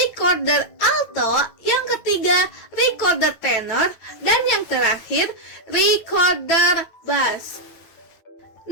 alto, yang ketiga recorder tenor, dan yang terakhir recorder bass.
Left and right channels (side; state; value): right; late; 9.2 ms